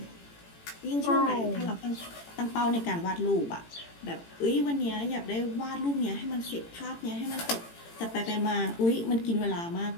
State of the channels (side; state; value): right; late; 18 ms